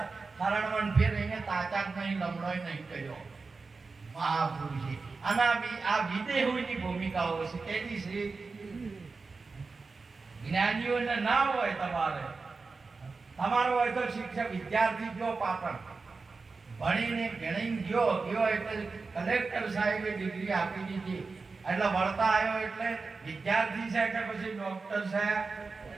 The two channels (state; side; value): quieter; left; 4.2 dB